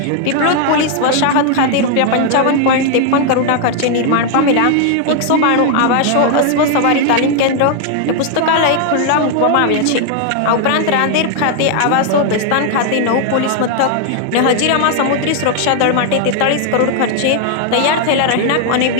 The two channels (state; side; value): different; both; correlation 0.00